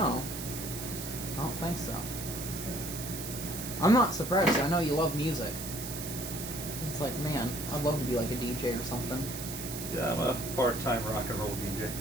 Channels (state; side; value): noise; right; hiss, 7 dB below the sound